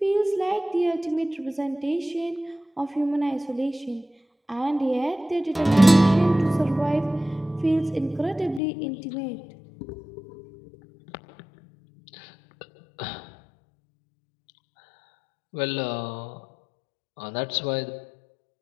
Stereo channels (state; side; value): drops out; right; at 8.6 s